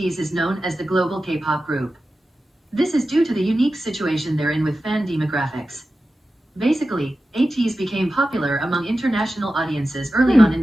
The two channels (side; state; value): both; normal; correlation 0.93